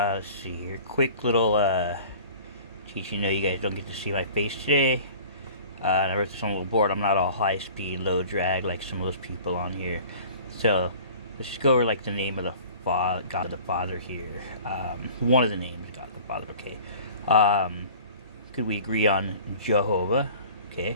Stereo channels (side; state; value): both; inverted; correlation -0.45